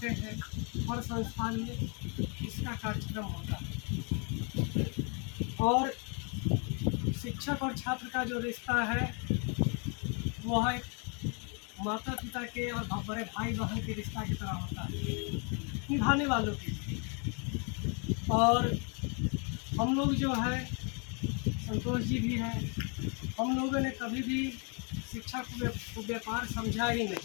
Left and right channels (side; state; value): right; quieter; 36.4 dB